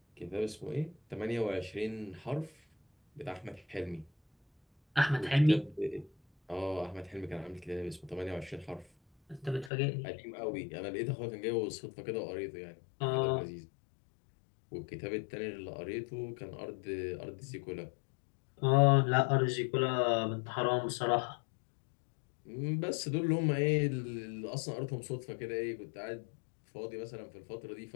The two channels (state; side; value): drops out; right; at 9.7 s